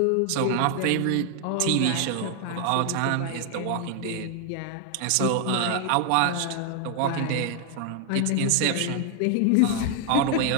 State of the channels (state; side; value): different; both; correlation 0.00